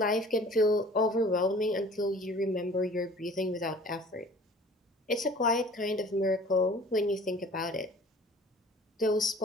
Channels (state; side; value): normal; both; correlation 0.48